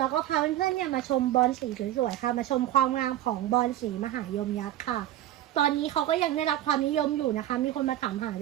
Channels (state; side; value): quieter; left; 13.2 dB